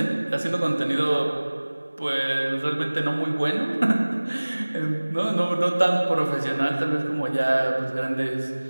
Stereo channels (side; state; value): both; inverted; correlation -1.00